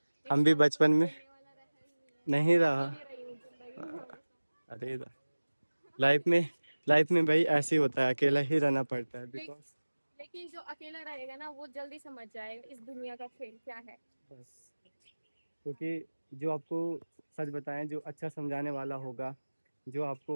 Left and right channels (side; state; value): both; inverted; correlation -1.00